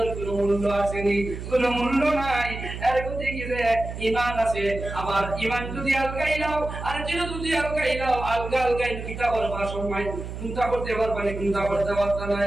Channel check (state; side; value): noise; right; hum, 8 dB below the sound